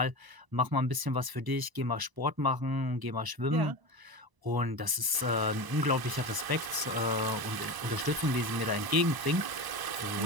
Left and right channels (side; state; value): left; late; 1.0 ms